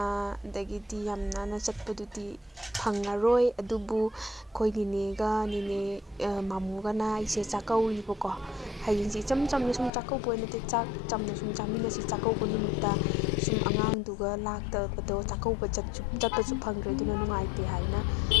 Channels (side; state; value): right; drops out; at 9.9 s